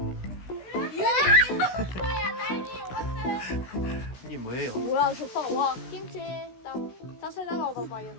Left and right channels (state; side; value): late; right; 16 ms